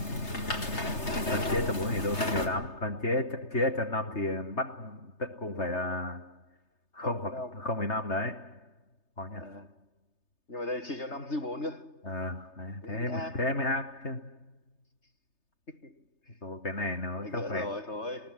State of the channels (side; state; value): right; late; 3.3 ms